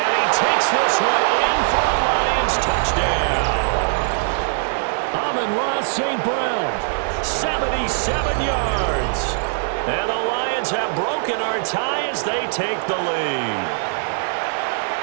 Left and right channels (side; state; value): left; silent; 60 dB below the other